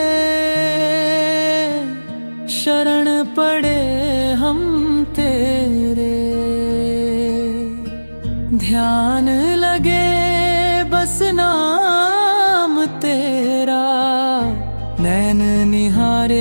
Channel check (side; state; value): both; inverted; correlation -1.00